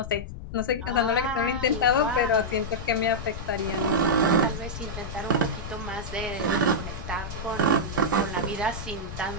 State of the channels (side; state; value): left; noise; rumble, 9 dB below the sound